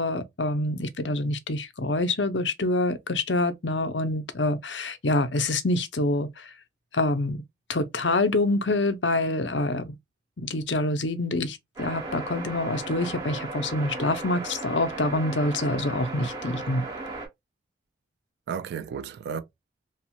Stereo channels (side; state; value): both; normal; correlation 0.19